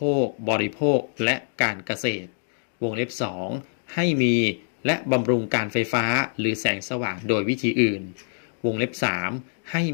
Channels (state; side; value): silent; right; digital silence